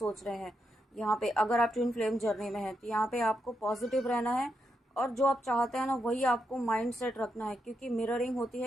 रहे हैं। यहाँ पे अगर आप ट्विन फ्लेम जर्नी में हैं तो यहाँ पे आपको पॉजिटिव रहना है, और जो आप चाहते हैं ना वही आपको माइंड सेट रखना है, क्योंकि मिररिंग होती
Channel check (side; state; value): both; normal; correlation 0.83